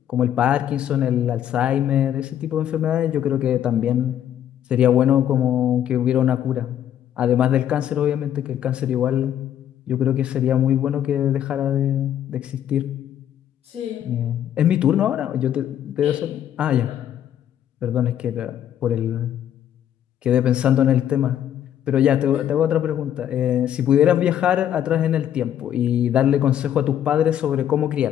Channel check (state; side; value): quieter; right; 10.5 dB